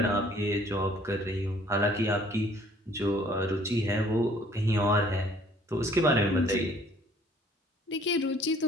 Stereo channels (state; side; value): normal; both; correlation 0.57